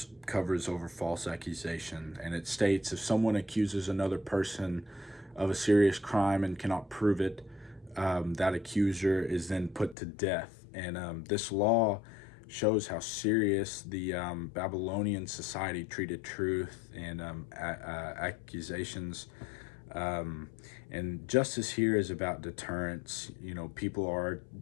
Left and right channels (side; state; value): right; drops out; at 10.0 s